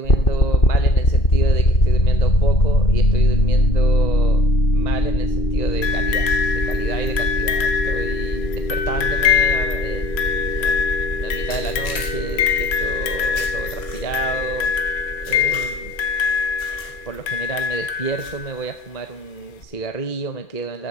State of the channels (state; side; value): late; right; 2.4 ms